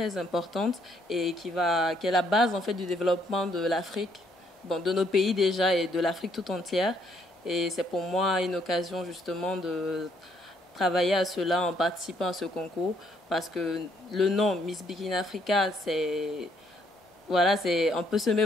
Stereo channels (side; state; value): both; normal; correlation 0.69